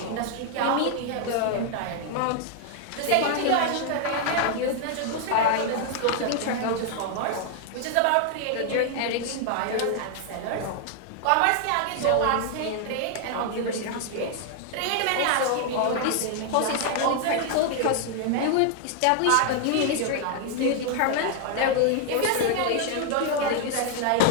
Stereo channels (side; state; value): both; different; correlation 0.00